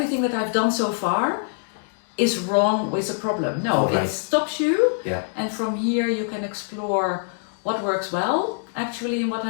that I've done so far is wrong with a problem. No, it stops you, and from here you can explore what works well actually in what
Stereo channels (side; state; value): right; silent; 63 dB below the other